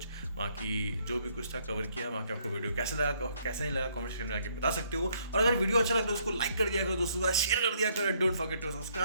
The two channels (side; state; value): both; inverted; correlation -0.68